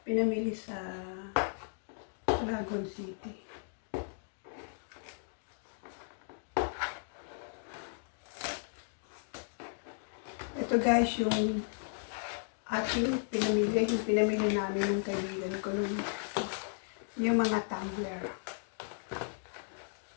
pinamili sa Dragon City. Ito guys, yung pinamili namin ng kaibigan ko yung mga tumbler.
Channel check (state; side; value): silent; right; digital silence